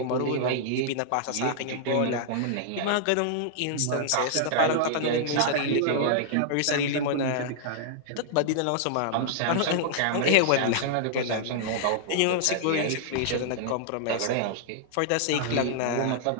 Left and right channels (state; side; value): different; both; correlation -0.01